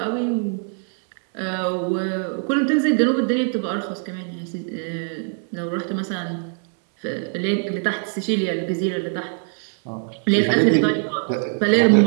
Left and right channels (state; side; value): silent; left; 57 dB below the other